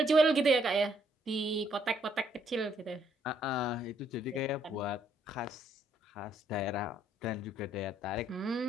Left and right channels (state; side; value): normal; both; correlation 0.69